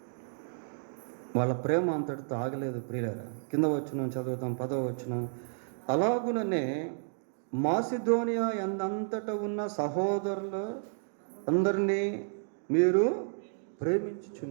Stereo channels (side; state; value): left; silent; digital silence